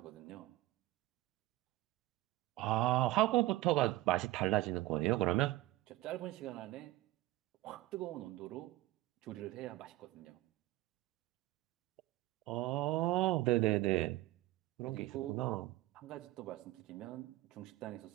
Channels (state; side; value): quieter; left; 17.6 dB